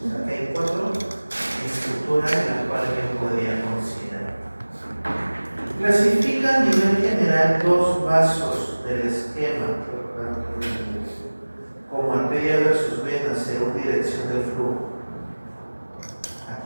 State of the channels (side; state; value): both; inverted; correlation -1.00